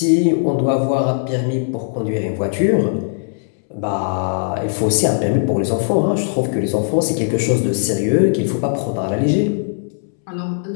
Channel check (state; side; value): silent; right; 67 dB below the other